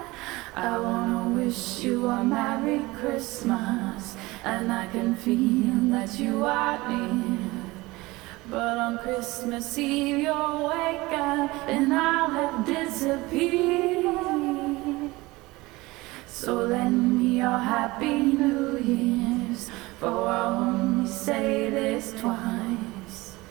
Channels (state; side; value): quieter; left; 21.2 dB